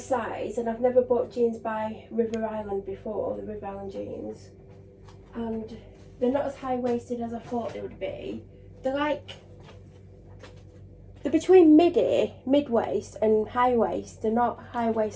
and I've never bought jeans by River Island before, the River Island jeans, and they're not as high-waisted as I thought they would be. They're between mid-waist and high-waist. They're not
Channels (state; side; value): identical; both; correlation 1.00